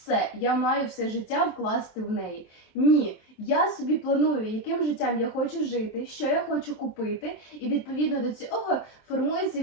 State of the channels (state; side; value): late; right; 24 ms